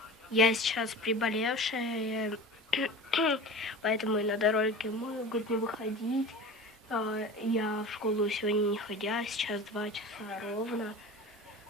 Я сейчас приболевшая, поэтому и на дороге могут не выходить. Я в школу сегодня не ходя, сейчас 2 часа ровно.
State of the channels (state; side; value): normal; both; correlation 0.35